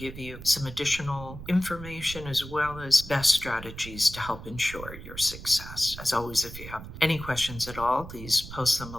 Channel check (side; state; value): right; noise; rumble, 12 dB below the sound